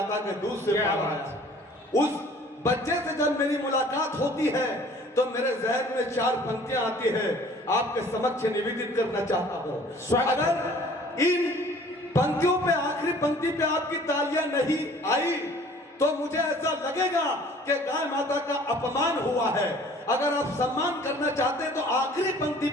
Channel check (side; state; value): both; normal; correlation 0.52